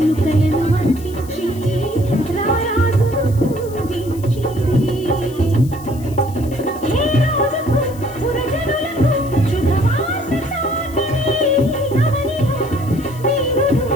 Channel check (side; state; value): left; noise; hiss, 20 dB below the sound